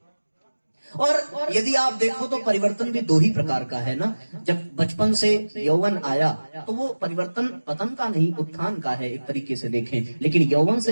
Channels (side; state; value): both; inverted; correlation -1.00